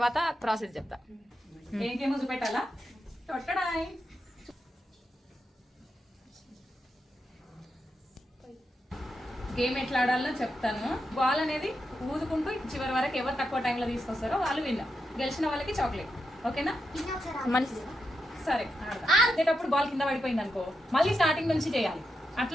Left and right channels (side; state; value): both; normal; correlation 0.86